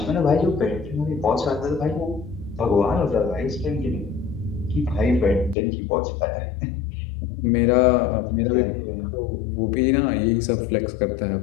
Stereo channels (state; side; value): drops out; right; at 5.6 s